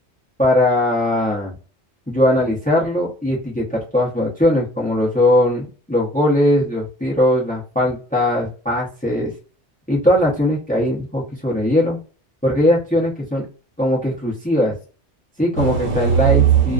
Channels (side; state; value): both; normal; correlation 0.49